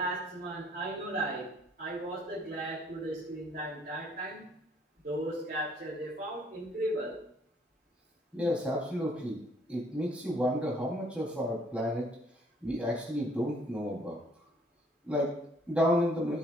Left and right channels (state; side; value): normal; both; correlation 0.63